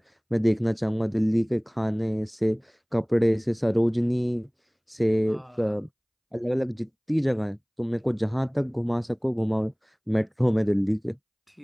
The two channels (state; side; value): identical; both; correlation 1.00